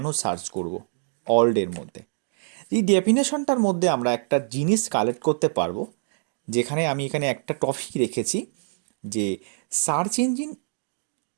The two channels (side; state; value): left; silent; digital silence